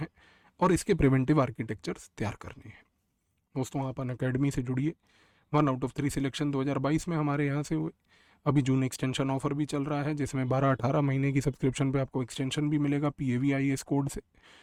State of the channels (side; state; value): both; identical; correlation 1.00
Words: और इसके प्रिवेंटिव आर्किटेक्चर्स तैयार करने हैं। दोस्तों, आप अनअकैडमी से जुड़िए। 1 आउट ऑफ 3 सिलेक्शन 2022 में हमारे यहाँ से हुए। अभी जून एक्सटेंशन ऑफर भी चल रहा है जिसमें 12-18 महीने की सब्सक्रिप्शन पे आपको एक्सटेंशन भी मिलेगा PAVIS कोड से।